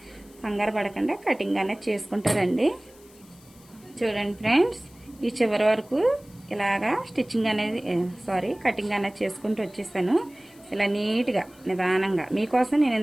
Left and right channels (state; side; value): noise; left; hiss, 26 dB below the sound